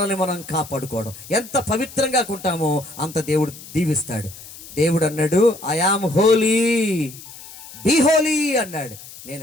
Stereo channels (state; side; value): noise; left; hiss, 17 dB below the sound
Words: మనం కాపాడుకోవడం. ఎంత పవిత్రంగా ఉంటామో అంత దేవుడు దీవిస్తాడు. దేవుడు అన్నాడు, I am holy, be holy అన్నాడు.